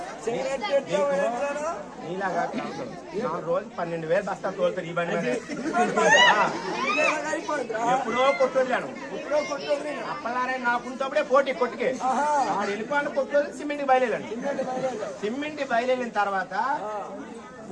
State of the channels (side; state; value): both; identical; correlation 1.00